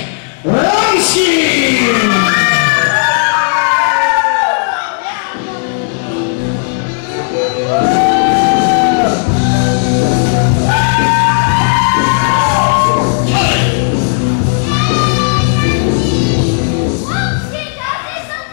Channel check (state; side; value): silent; right; digital silence